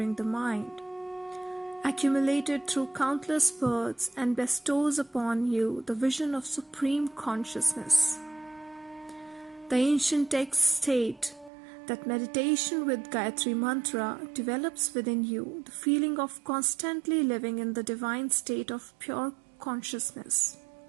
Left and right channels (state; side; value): drops out; left; at 11.5 s